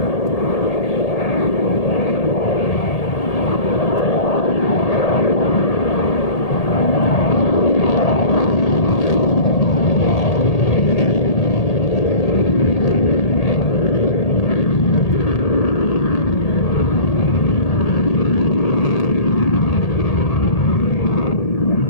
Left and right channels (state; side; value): late; right; 1.8 ms